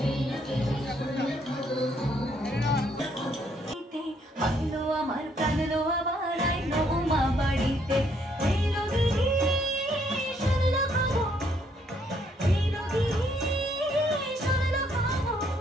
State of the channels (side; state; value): both; normal; correlation 0.69